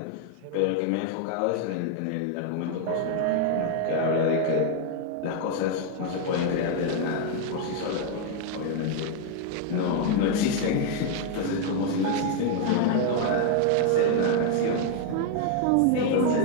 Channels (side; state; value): both; different; correlation 0.00